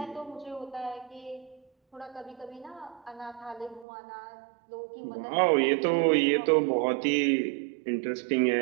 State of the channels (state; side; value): drops out; left; at 3.9 s